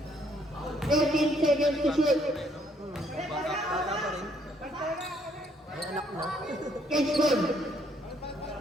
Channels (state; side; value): normal; both; correlation 0.67